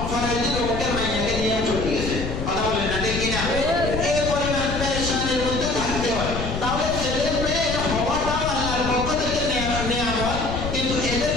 পরের দিন অমুকের মাইয়াকে নিয়ে চলে গেছে। কথা বলেন না ঠিক কিনা? এই পরিমাণ পেরেশানির মধ্যে থাকতে হয়। তাহলে ছেলে মেয়ে হওয়াটাও আল্লাহর পক্ষ থেকে নেয়ামত, কিন্তু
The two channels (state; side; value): noise; left; rumble, 5 dB below the sound